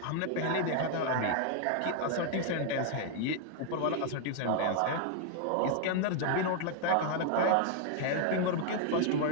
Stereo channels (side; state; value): both; different; correlation 0.00